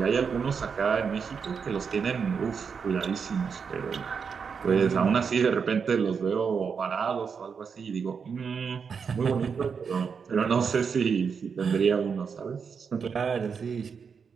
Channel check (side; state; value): left; quieter; 6.1 dB